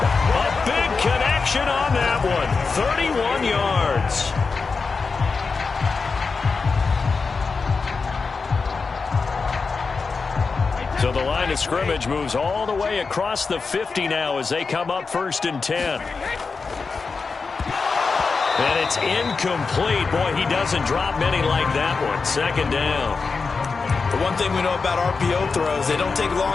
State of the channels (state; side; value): quieter; right; 4.6 dB